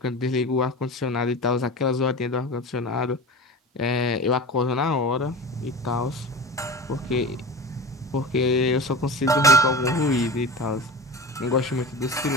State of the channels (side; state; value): both; normal; correlation 0.31